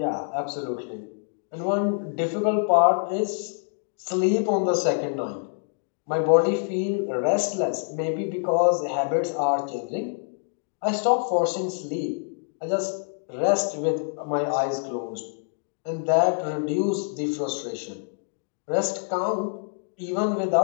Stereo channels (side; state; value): right; silent; 61 dB below the other